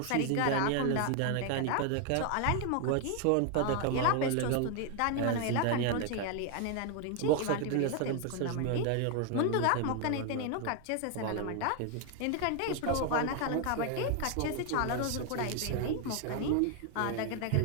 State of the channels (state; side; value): different; both; correlation 0.01